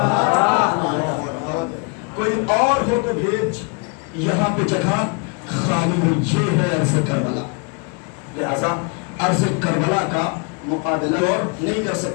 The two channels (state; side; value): quieter; right; 33.0 dB